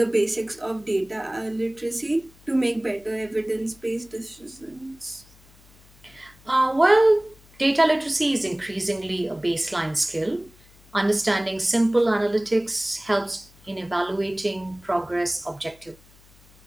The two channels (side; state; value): left; noise; hum, 27 dB below the sound